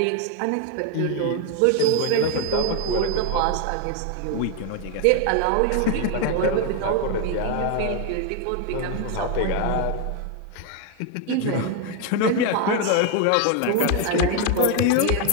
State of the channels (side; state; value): both; different; correlation 0.01